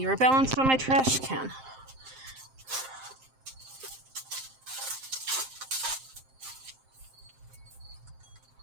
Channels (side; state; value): left; late; 7.6 ms